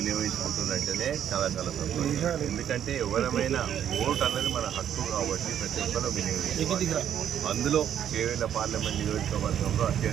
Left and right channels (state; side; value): quieter; left; 9.8 dB